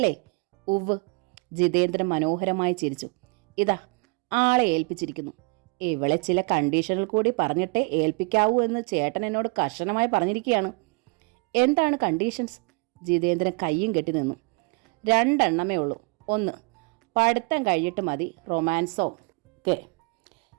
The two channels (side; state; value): left; quieter; 31.6 dB